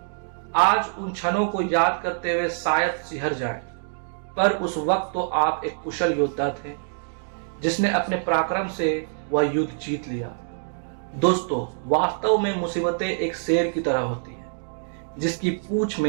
आज उन क्षणों को याद करते हुए शायद सिहर जाएं, पर उस वक्त तो आप एक कुशल योद्धा थे जिसने अपने पराक्रम से वह युद्ध जीत लिया। दोस्तों, वास्तव में मुसीबतें एक शेर की तरह होती है जिसकी पूंछ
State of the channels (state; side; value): silent; left; digital silence